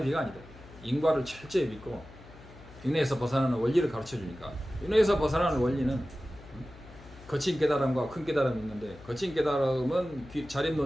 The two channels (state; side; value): noise; left; hum, 20 dB below the sound